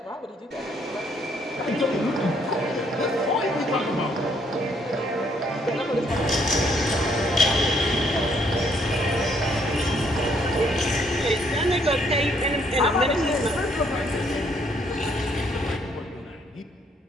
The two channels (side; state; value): both; normal; correlation 0.68